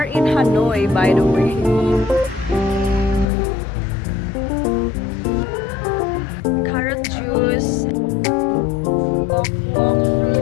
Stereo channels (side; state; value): right; drops out; at 3.2 s